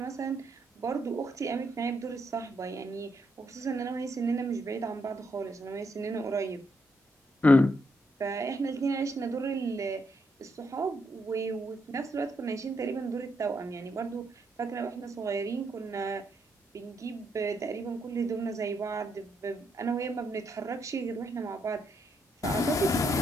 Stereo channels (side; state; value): both; normal; correlation 0.78